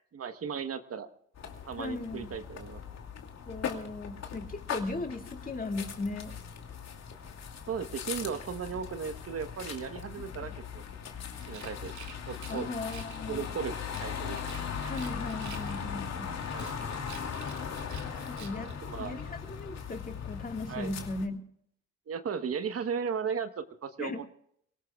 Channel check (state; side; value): normal; both; correlation 0.26